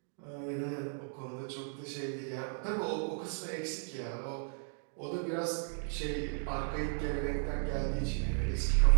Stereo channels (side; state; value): left; silent; 55 dB below the other